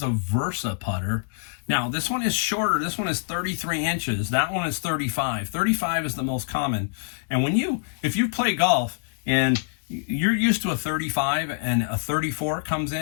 a Versa putter. Now, this one is shorter. This one is 33 inches. That one is 35. 35 is the most common. And if you play golf and you're used to a 35 and a 34 comes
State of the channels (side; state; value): right; silent; digital silence